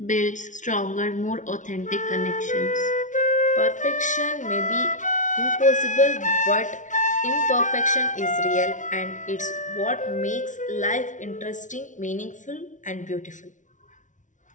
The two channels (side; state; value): right; late; 0.37 ms